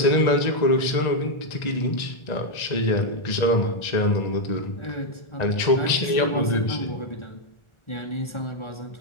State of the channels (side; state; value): right; late; 1.4 ms